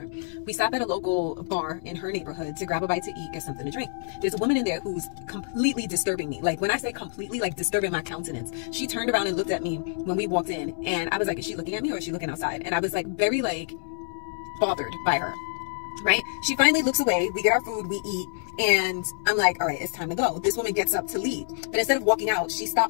We stopped at a local bar in her neighborhood to grab a bite to eat, get something to drink. There's a woman in there who's completely disturbing me. Like, when I say completely, like disturbing my countenance. She turned around and looked at me when we walked in, and I was like, is she looking at me or is she looking outside? And I was like very like bothered by her. Right? She finally looks away. We get our food, we eat, and I'm like, all right, it's time to go. This woman gets up to leave, but instead of walking out, she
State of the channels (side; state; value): right; silent; 60 dB below the other